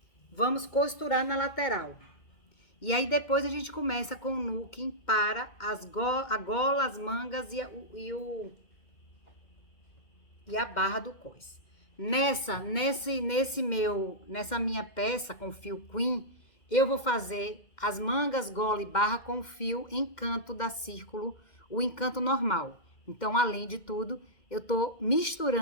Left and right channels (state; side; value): late; right; 2.1 ms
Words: Vamos costurar na lateral. E aí, depois a gente começa com o nuking para a gola, as mangas e a barra do cós. Nessa minha peça com fio Queen, eu vou fazer as mangas, gola e barra com fio encanto da círculo, o encanto normal. Então, além de tudo, eu tô